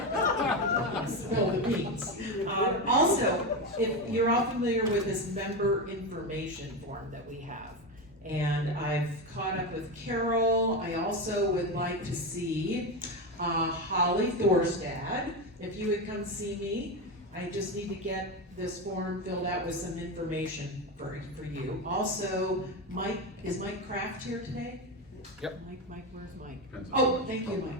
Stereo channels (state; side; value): normal; both; correlation 0.15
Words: spill the beans. Also, if you're all familiar with this member information form that we have, and I've caught up with Carol. I also would like to see Holly Thorstad. If you would come see me, I just need to get this form filled out with some information for you. Also, Mike, is Mike Kraft here today? Yep. Mike, where's Mike? Oh, thank you,